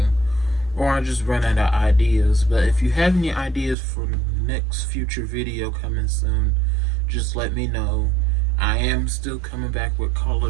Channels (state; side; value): drops out; left; at 3.8 s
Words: or I just run out of ideas. But if you have any ideas for the next future video coming soon, just let me know. I am still coming back with